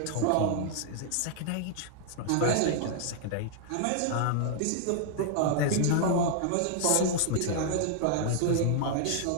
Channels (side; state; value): both; different; correlation 0.00